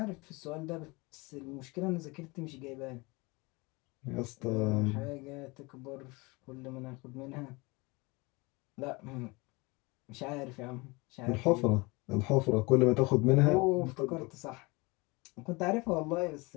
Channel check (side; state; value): right; quieter; 25.6 dB